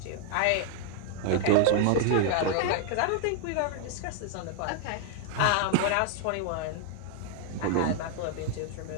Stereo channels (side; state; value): both; different; correlation 0.00